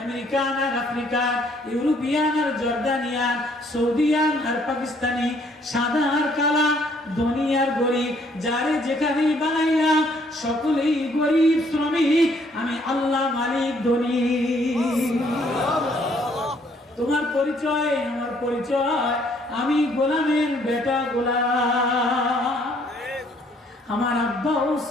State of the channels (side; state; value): both; normal; correlation 0.65